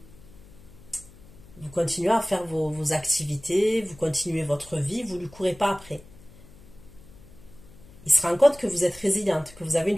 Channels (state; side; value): noise; left; hum, 22 dB below the sound